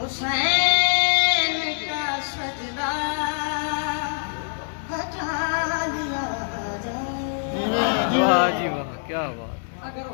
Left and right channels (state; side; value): silent; right; digital silence